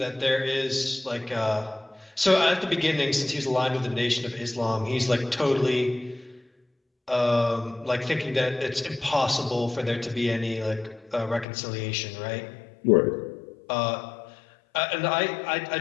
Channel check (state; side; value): drops out; right; at 11.5 s